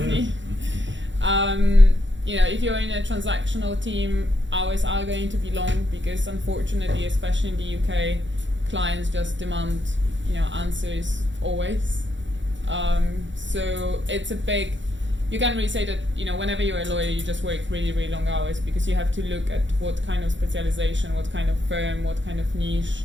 If you're in a transactional team, hours are going to be long because unfortunately, especially in the UK, clients just demand, answers always. So it's a big, you can't really say that, whenever you're a lawyer, you just work really, really long hours because you have to look at what kind of specialization, what kind of firm, what kind of niche,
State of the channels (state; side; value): late; left; 0.54 ms